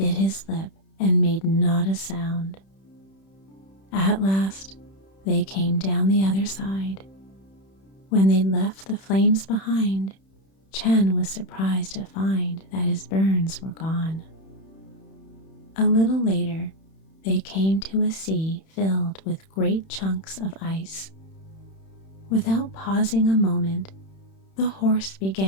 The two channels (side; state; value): right; late; 31 ms